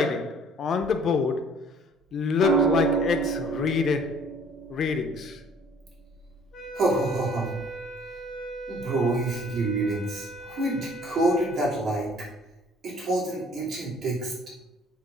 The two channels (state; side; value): normal; both; correlation 0.55